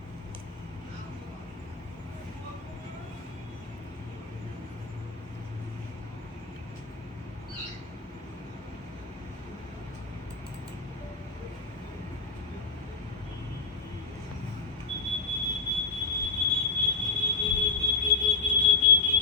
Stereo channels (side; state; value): right; quieter; 4.4 dB